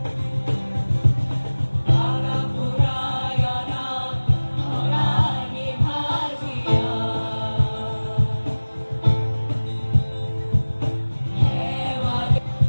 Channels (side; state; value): both; inverted; correlation -1.00